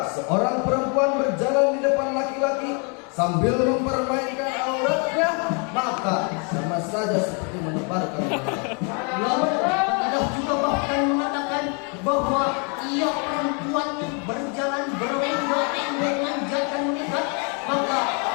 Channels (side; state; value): right; quieter; 36.4 dB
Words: seorang perempuan berjalan di depan laki-laki sambil mempermainkan auratnya, maka sama saja seperti menebarkan Lalu ada juga bahkan mengatakan bahwa ia perempuan berjalan berenggak-enggak menjaga menikah, maka